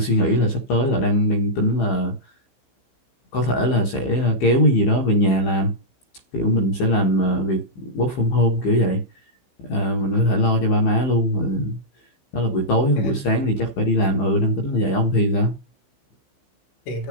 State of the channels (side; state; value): right; late; 15 ms